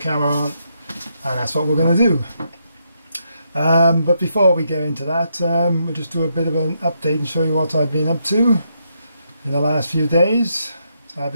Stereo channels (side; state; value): both; inverted; correlation -0.79